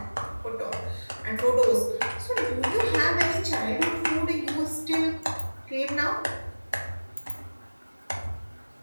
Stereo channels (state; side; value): inverted; both; correlation -1.00